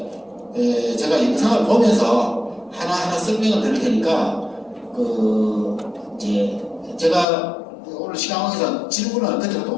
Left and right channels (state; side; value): drops out; right; at 7.2 s